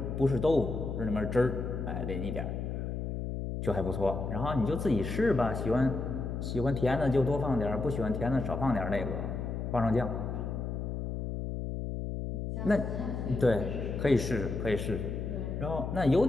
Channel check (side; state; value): left; noise; hum, 4 dB below the sound